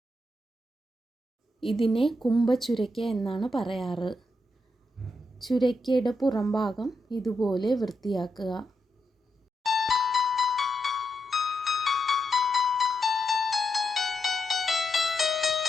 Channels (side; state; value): both; normal; correlation 0.83